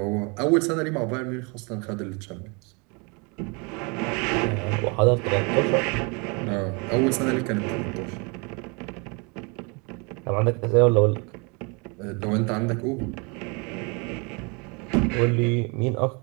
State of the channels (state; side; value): quieter; left; 31.4 dB